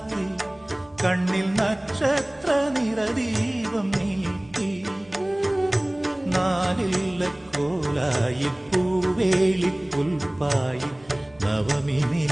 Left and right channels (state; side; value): noise; right; hum, 28 dB below the sound